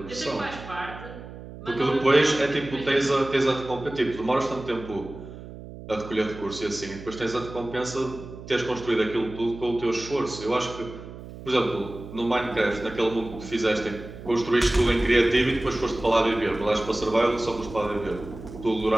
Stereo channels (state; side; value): noise; right; hum, 14 dB below the sound